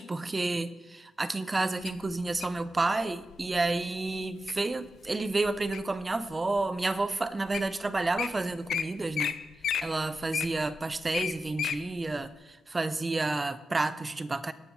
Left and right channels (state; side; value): normal; both; correlation 0.91